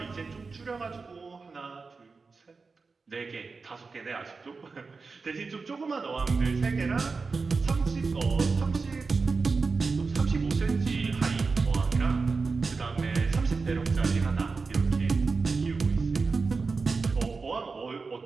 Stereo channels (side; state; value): left; quieter; 4.4 dB